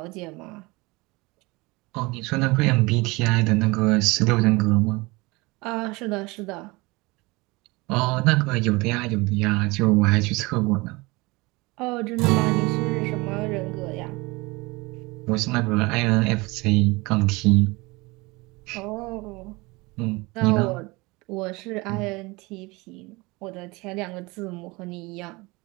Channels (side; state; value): left; quieter; 24.0 dB